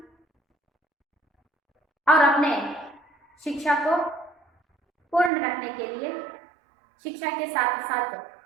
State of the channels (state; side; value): drops out; left; at 5.3 s